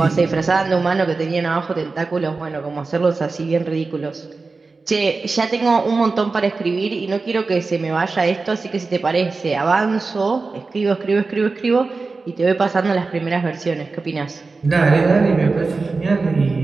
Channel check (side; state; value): left; quieter; 4.0 dB